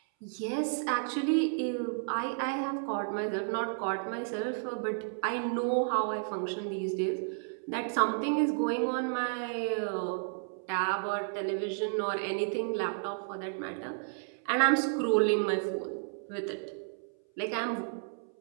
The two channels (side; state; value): left; silent; 56 dB below the other